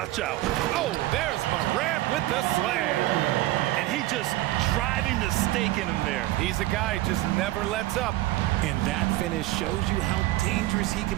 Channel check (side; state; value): left; quieter; 16.6 dB